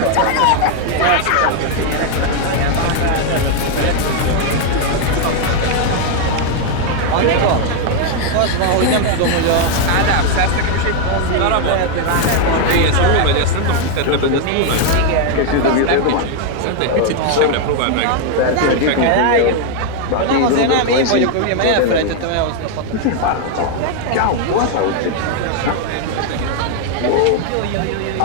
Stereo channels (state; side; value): different; both; correlation 0.01